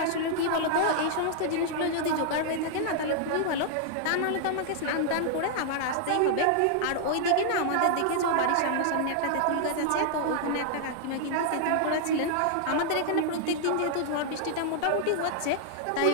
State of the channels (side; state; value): both; different; correlation -0.01